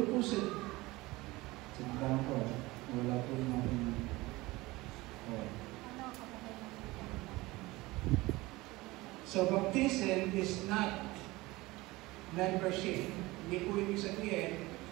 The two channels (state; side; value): quieter; left; 20.6 dB